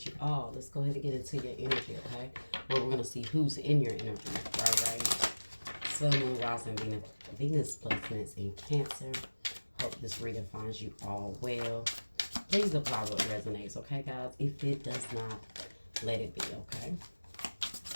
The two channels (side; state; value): both; inverted; correlation -1.00